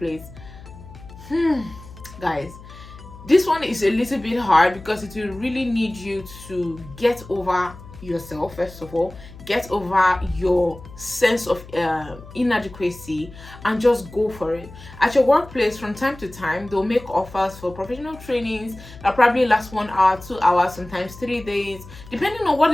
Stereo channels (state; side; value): noise; left; hum, 17 dB below the sound